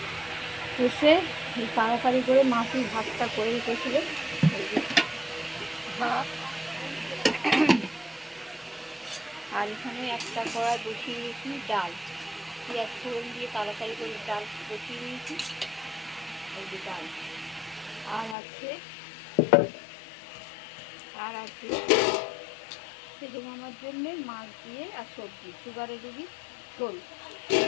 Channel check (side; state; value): right; drops out; at 18.4 s